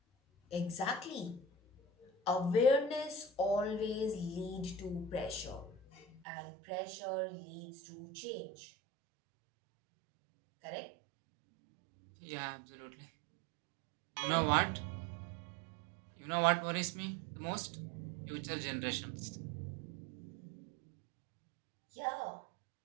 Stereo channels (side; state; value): left; drops out; at 6.2 s